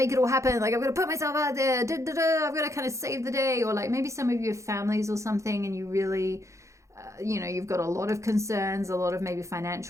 it all happen, like I've got to put myself out there, I've got to kind of save the day. Or like maybe some of you have families or something, and you really you know, you've got a lot of concerns, a lot of maybe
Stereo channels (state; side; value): late; left; 0.15 ms